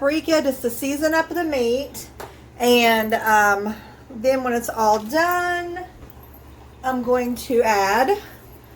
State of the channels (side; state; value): both; identical; correlation 1.00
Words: just to season up the meat. And then when it's all done, I'm going to add a